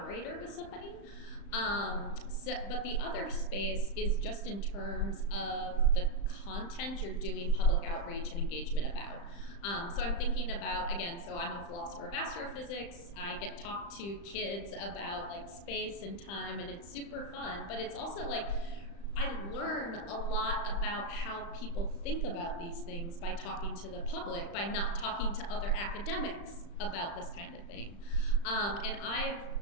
with somebody. But the other space is just in terms of the content you're doing public outreach and engagement about. So I'm thinking about, again, so I'm a philosopher of astrophysics. I get talked to kids about like space and time, and it's super fun, but it's also like, I learn a lot about how people think about these things by talking to the public, by not talking to other academics about this kind of thing. And I've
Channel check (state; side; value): late; right; 35 ms